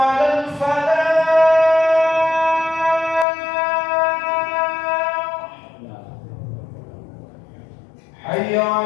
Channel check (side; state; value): right; drops out; at 3.2 s